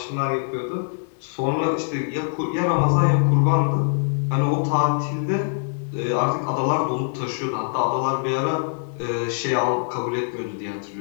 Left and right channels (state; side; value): silent; right; digital silence